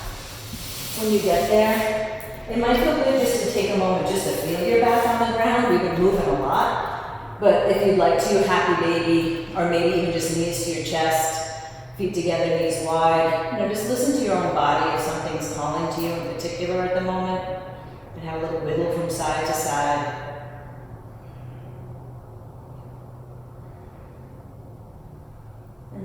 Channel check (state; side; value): identical; both; correlation 1.00